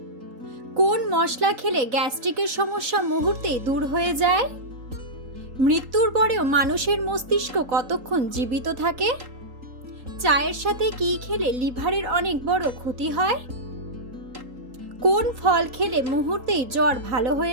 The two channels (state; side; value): late; left; 4.1 ms